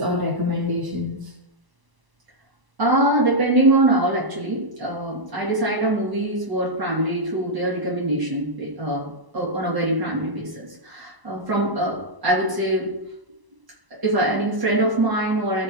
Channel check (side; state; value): left; late; 1.0 ms